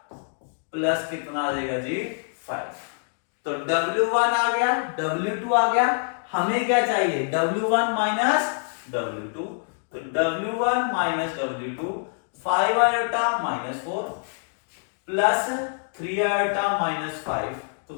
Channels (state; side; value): silent; right; digital silence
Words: प्लस कितना आ जाएगा जी, 5। तो W1 आ गया, W2 आ गया। हमें क्या चाहिए, W1 माइनस W2। तो W1 minus W2, 5 iota minus 4 plus 3 iota minus 5। तो